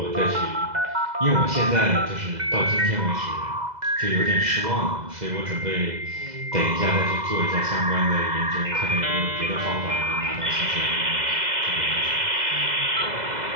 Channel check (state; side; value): late; left; 2.0 ms